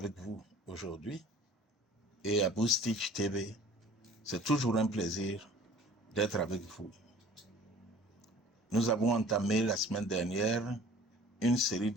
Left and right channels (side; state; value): both; normal; correlation 0.47